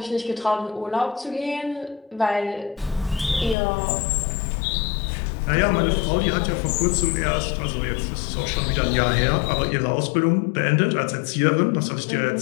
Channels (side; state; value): right; drops out; at 3.6 s